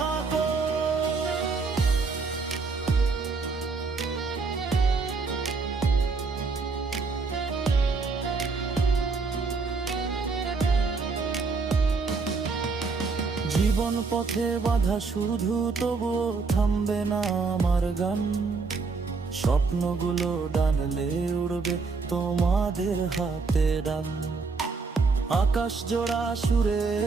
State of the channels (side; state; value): left; quieter; 4.4 dB